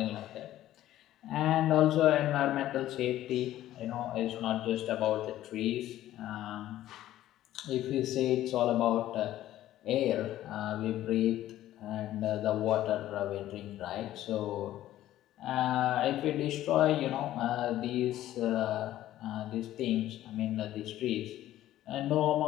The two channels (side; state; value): right; quieter; 13.6 dB